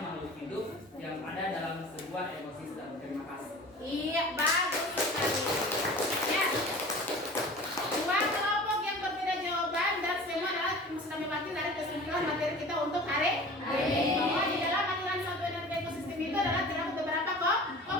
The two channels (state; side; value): normal; both; correlation 0.40